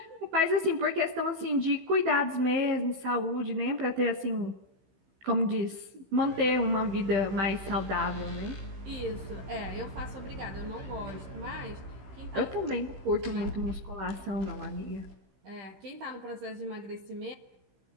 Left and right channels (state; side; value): late; left; 15 ms